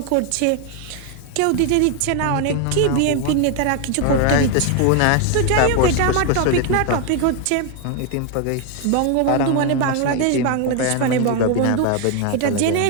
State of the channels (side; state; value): both; different; correlation 0.01